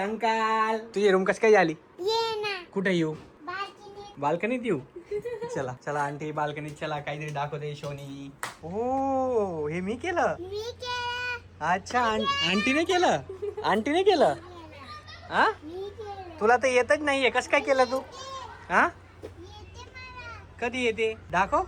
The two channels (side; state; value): both; identical; correlation 1.00